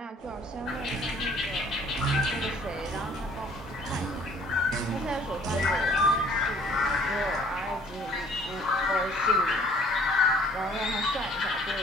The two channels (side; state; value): both; normal; correlation 0.57